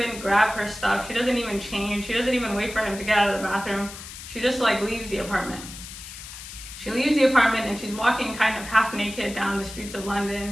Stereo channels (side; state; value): left; noise; hiss, 13 dB below the sound